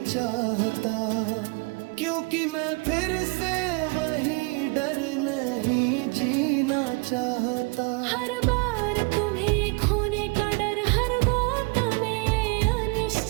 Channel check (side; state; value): left; quieter; 30.0 dB